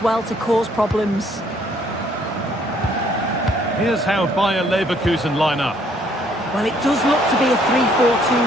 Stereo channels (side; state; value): both; normal; correlation 0.64